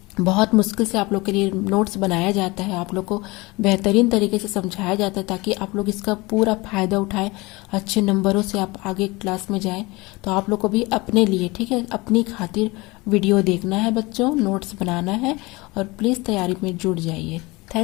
बहुत मुश्किल से आप लोग के लिए नोट्स बनाया जाता है, आप लोग को बेहतरीन तरीके से समझाया जाता है ताकि आप लोग इसका पूरा फायदा उठाएं, अच्छे नंबरों से आप आगे क्लास में जाएं। तो आप लोग को भी अपने लिए, ठीक है, अपनी खातिर वीडियो देखना है बच्चों, नोट्स बनाना है और प्लीज़ तैयारी में जुट जाइए।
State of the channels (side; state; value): right; quieter; 23.3 dB